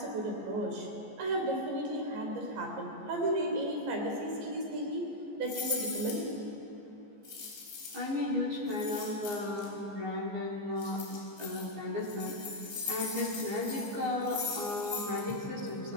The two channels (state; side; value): late; left; 15 ms